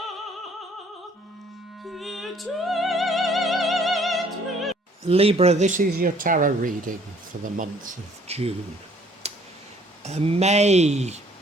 Peut-être. Libra, this is your tarot reading for the month of June. May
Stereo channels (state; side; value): normal; both; correlation 0.59